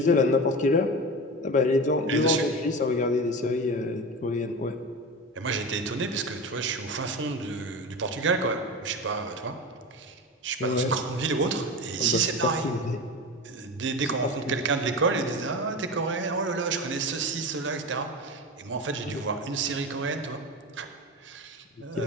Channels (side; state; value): both; normal; correlation 0.26